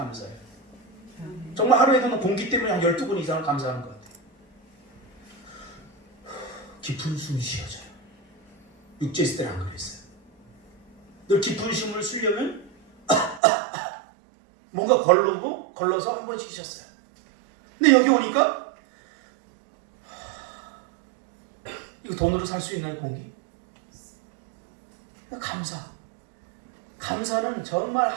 정말 하루에도 공기 때문에 한 12번 이상을 감사하는 것 같아요. 깊은 숨이 쉬어져요. 육지에 있을 때는 안 그랬어요. 늘 깊은 숨을 쉬려면 뭔가 걸러서 한 번씩 쉬었어요. 근데 여기 오니까 이거 돈으로 살 수 있나요, 공기? 감사. 감사는 정말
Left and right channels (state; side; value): drops out; left; at 13.4 s